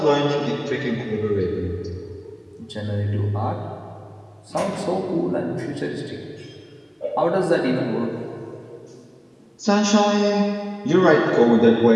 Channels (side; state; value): both; identical; correlation 1.00